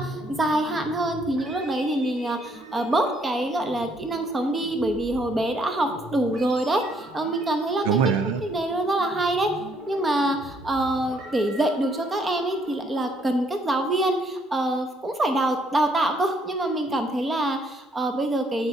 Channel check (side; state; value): both; normal; correlation 0.68